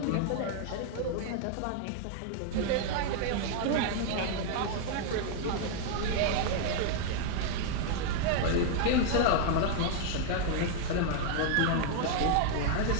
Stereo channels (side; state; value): both; different; correlation 0.00